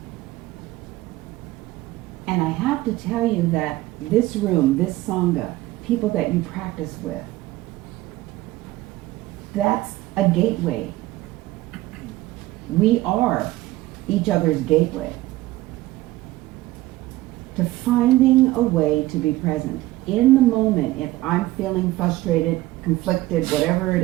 And I have to tell you that this room, this Sangha, people that you practice with, that's a gateway. We are each other's gateway to finding a way to be present. In the moment, if I'm feeling frustrated, conflicted, whatever it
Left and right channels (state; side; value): quieter; left; 17.4 dB